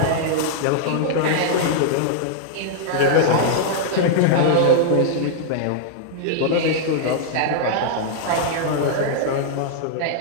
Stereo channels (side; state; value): both; different; correlation -0.01